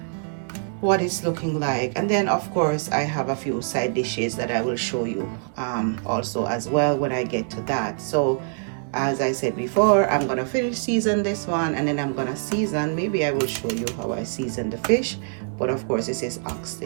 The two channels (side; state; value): left; silent; digital silence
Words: what it's looking like. And then of course I have a few side dishes that I will show you also as well when I get to that. So as I said before, I'm gonna finish season this one, and then I'm gonna season, maybe I will show you how I season the fish, but of course this is